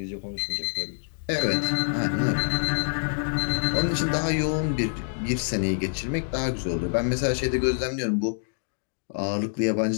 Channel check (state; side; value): silent; right; digital silence